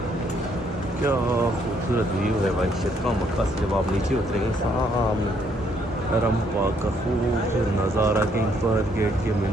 क्या खूबसूरत व्यू है भाई शिरका मक्का से। जब आप नीचे उतरेंगे सामने हरम पाक का खूबसूरत नज़ारा, किंग फहद गेट के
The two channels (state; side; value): normal; both; correlation 0.70